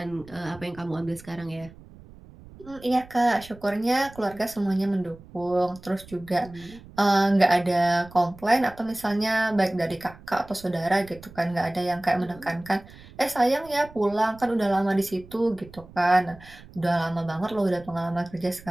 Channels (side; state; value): right; noise; rumble, 21 dB below the sound